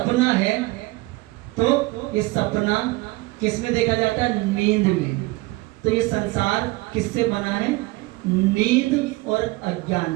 है, तो ये सपना किस में देखा जाता है? नींद में। तो ये संसार किससे बना है? नींद और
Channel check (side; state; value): left; quieter; 22.0 dB